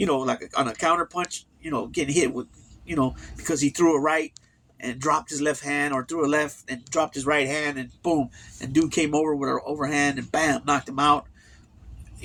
on a counter punch, getting hit with, because he threw a right and dropped his left hand, or threw a left and dropped his right hand, and boom, and dude came over with an overhand and bam, knocked him out,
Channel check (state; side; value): identical; both; correlation 1.00